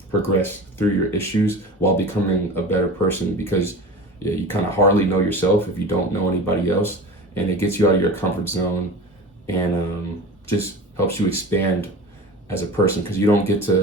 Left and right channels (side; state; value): both; normal; correlation 0.34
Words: progress through your issues while becoming a better person, because you kind of hardly know yourself if you don't know anybody else, and it gets you out of your comfort zone and just helps you expand as a person, because you don't get